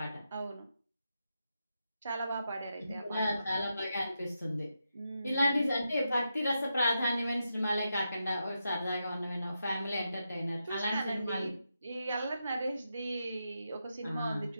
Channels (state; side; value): inverted; both; correlation -0.86